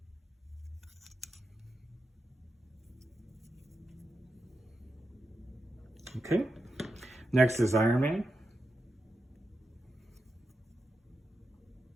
Okay, next is Iron Man.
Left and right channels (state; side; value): normal; both; correlation 0.88